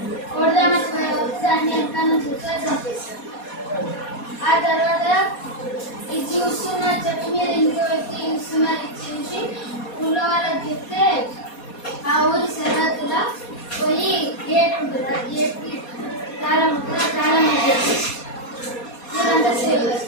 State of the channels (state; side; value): late; right; 4.2 ms